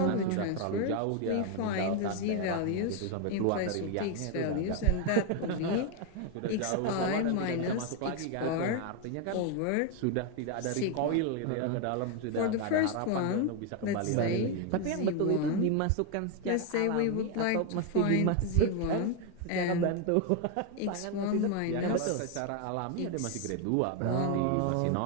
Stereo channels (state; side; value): different; both; correlation 0.01